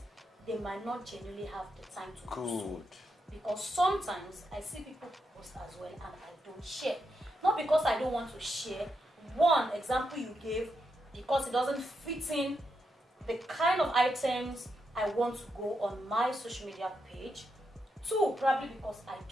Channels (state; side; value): normal; both; correlation 0.83